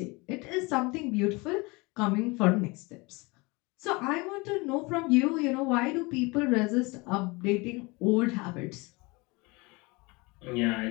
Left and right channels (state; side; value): quieter; right; 25.8 dB